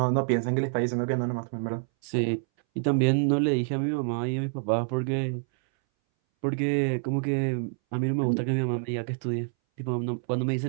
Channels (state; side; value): silent; left; 60 dB below the other